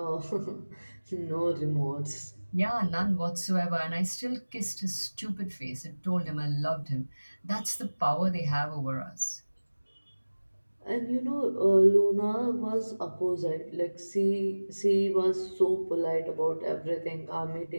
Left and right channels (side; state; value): both; inverted; correlation -1.00